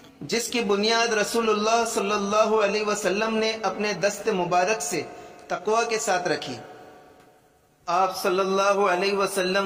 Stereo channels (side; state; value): both; identical; correlation 1.00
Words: جس کی بنیاد رسول اللہ صلی اللہ علیہ وسلم نے اپنے دست مبارک سے تقوی کے ساتھ رکھی۔ آپ صلی اللہ علیہ